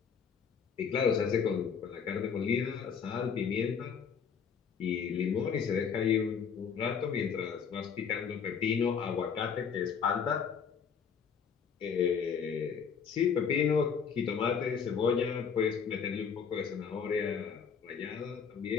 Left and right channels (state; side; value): quieter; right; 6.7 dB